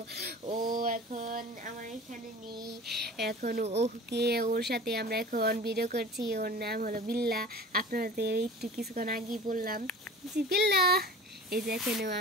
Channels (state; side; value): normal; both; correlation 0.39